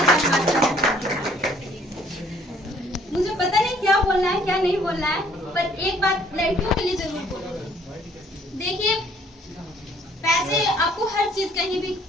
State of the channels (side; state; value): both; normal; correlation 0.60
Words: करना। मुझे पता नहीं क्या बोलना है क्या नहीं बोलना है, पर एक बात लड़कियों के लिए जरूर बोलूंगी। देखिए, पैसे आपको हर चीज कहीं भी